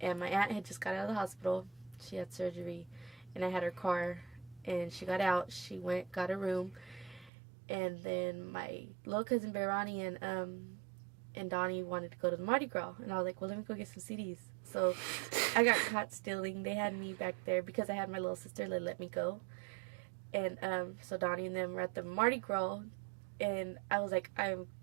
my aunt had just got out of the hospital, she had surgery, and I had her car, and she got out. She went, got a room, and then my little cousin Veronica and Donnie wanted to go to the Mardi Gras, and I was like, well, let me go get some CDs. So I got caught stealing. They had me back there because I had my little sister. They let me go, and so Donnie and them were at the Mardi Gras, and I was like, I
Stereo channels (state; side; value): drops out; left; at 7.3 s